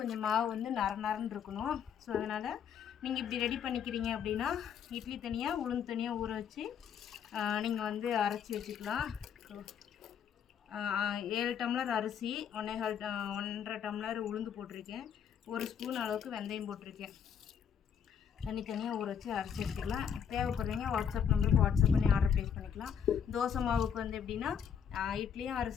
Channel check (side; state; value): right; quieter; 7.9 dB